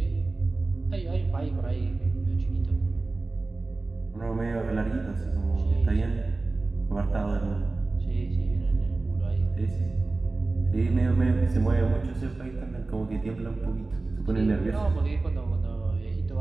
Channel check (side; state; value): left; quieter; 3.4 dB